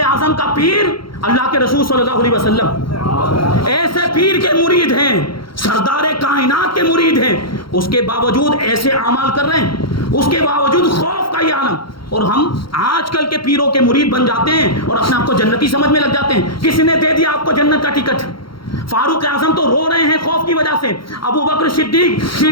اعظم کا پیر اللہ کے رسول صلی اللہ علیہ وسلم، ایسے پیر کے مرید ہیں، سردار کائنات کے مرید ہیں، اس کے باوجود ایسے اعمال کر رہے ہیں، اس کے باوجود خوف کا یہ عالم۔ اور ہم آج کل کے پیروں کے مرید بن جاتے ہیں اور اپنے آپ کو جنتی سمجھ میں لگ جاتے ہیں۔ کس نے دے دیا آپ کو جنت کا ٹکٹ؟ فاروق اعظم تو رو رہے ہیں خوف کی وجہ سے۔ ابو بکر صدیق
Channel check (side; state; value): right; late; 0.73 ms